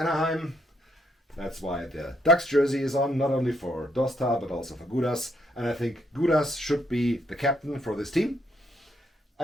That's why the Ducks jersey is on, not only for Dosta, but also for Gudas. And I think Gudas should be the captain for this team.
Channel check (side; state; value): both; normal; correlation 0.74